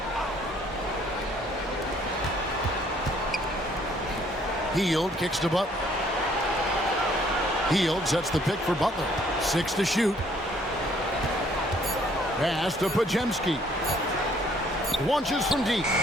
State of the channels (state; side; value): normal; both; correlation 0.62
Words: Hield kicks to Butler. Hield sets the pick for Butler. 6 to shoot. Pass to Pajemski. Launches from deep.